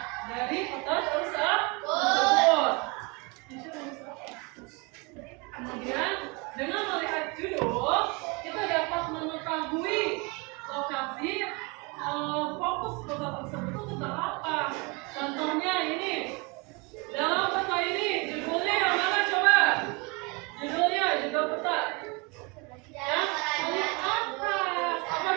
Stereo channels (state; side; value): quieter; left; 29.1 dB